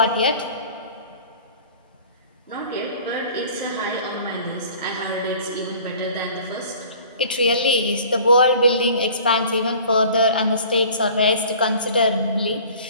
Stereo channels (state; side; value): inverted; both; correlation -0.47